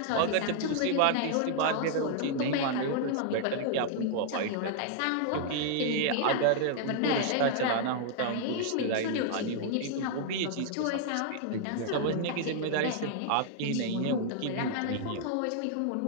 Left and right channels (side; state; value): both; different; correlation -0.01